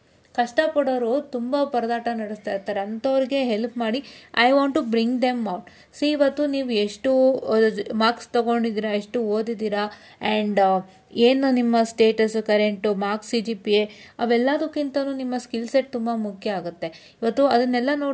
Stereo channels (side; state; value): both; identical; correlation 1.00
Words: ಕಷ್ಟಪಡೋರು ತುಂಬ ಪರದಾಟ ನಡೆಸ್ತಾ ಇರ್ತಾರೆ, ಅಂಥವ್ರಿಗೆ ಹೆಲ್ಪ್ ಮಾಡಿ. I want to bring them out. See ಇವತ್ತು ನೀವು ಎಷ್ಟು ಮಾರ್ಕ್ಸ್ ತೊಗೊಂಡಿದ್ದೀರಾ, ಎಷ್ಟು ಓದಿದ್ದೀರಾ, ಆ್ಯಂಡ್ ಏನು ನಿಮ್ಮ ಸ್ಟೇಟಸ್ಸು, ಕರೆಂಟು, ಮಾರ್ಕ್ಸ್, CGPA ಅವೆಲ್ಲದಕ್ಕಿಂತಲೂ ನಿಮ್ಮ ಸ್ಕಿಲ್ ಸೆಟ್ ತುಂಬ ಮುಖ್ಯ ಆಗುತ್ತೆ. ಇವತ್ತು ಅದನ್ನೆಲ್ಲ